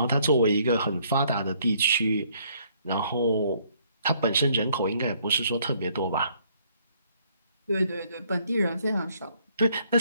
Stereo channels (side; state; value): both; inverted; correlation -0.66